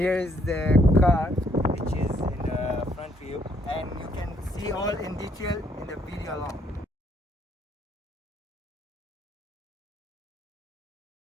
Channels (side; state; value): both; normal; correlation 0.69